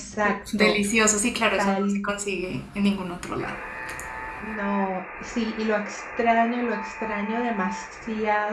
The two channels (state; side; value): identical; both; correlation 1.00